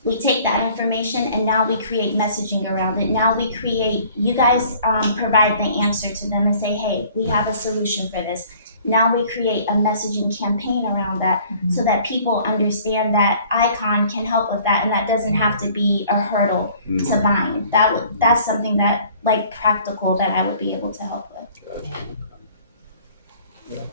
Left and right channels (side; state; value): both; inverted; correlation -0.54